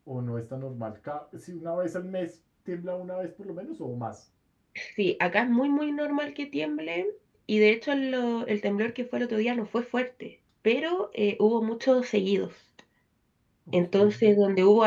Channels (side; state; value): both; identical; correlation 1.00